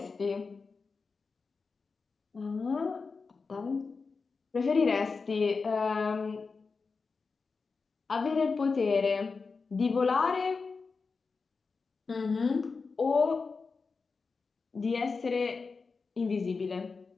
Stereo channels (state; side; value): quieter; right; 4.6 dB